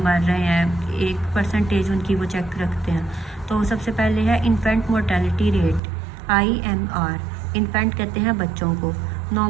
मर रहे हैं, एक परसेंटेज उनकी वो चेक रखते हैं। तो सबसे पहले है infant mortality rate, IMR। Infant कहते हैं बच्चों को,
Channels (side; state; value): left; drops out; at 5.8 s